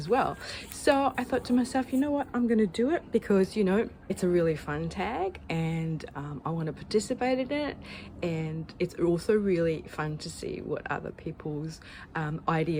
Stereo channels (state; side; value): identical; both; correlation 1.00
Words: well. So I thought to myself, you know what, I'm gonna do it because, you know, it's a really fun tag and I want to participate in it, and it's also really fun to see what other people's